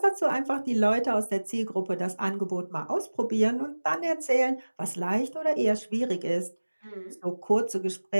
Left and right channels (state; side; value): inverted; both; correlation -1.00